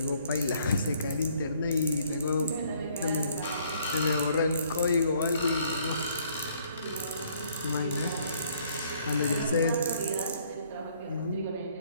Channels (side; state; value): both; inverted; correlation -0.63